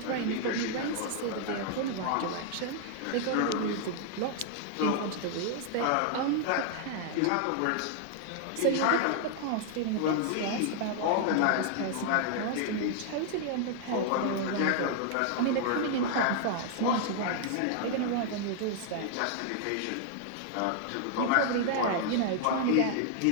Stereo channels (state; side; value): different; both; correlation -0.01